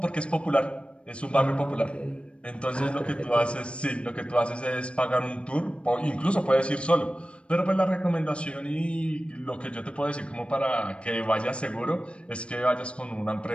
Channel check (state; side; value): late; right; 0.059 ms